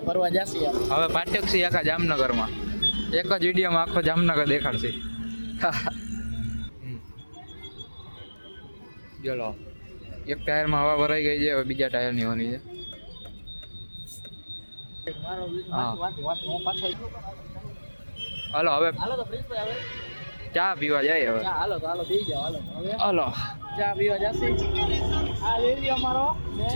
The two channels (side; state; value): both; inverted; correlation -1.00